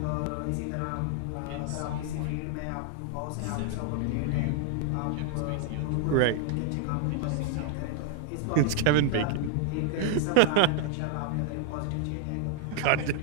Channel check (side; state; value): both; different; correlation 0.00